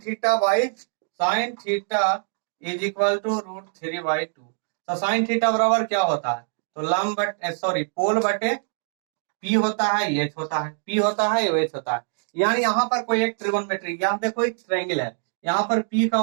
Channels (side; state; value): left; silent; digital silence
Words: theta is equal to √3/2। तो साइन थीटा बराबर क्या होता है, तो लंब बटे सॉरी पोल बटे पी होता है, एच होता है, पी होता है, एच होता है। यानी यहाँ पर कोई एक ट्रिगोनोमेट्री, यहाँ देखो एक ट्रायंगल है, यहाँ पर पी का